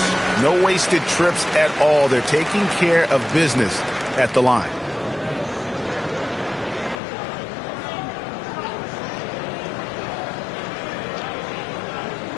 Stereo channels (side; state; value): right; drops out; at 7.0 s